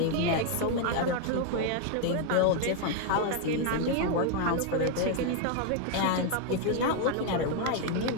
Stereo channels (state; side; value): different; both; correlation 0.01